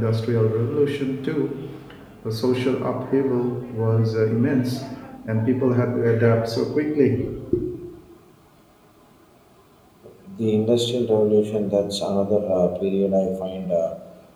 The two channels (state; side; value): identical; both; correlation 1.00